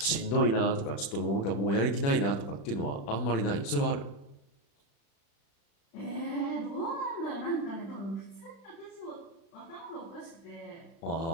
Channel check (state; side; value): late; right; 36 ms